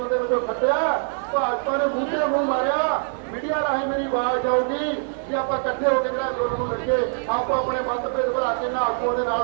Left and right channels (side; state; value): left; silent; 56 dB below the other